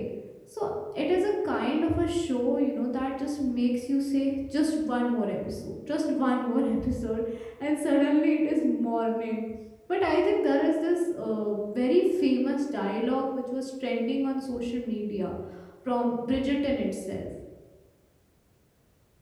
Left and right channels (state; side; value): identical; both; correlation 1.00